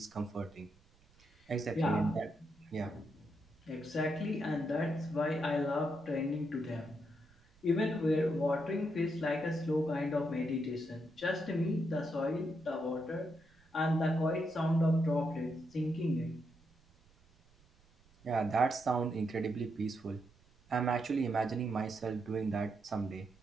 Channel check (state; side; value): noise; right; rumble, 30 dB below the sound